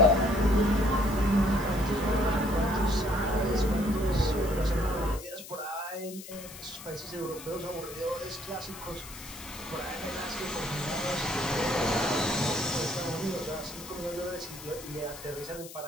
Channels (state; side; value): noise; left; hiss, 14 dB below the sound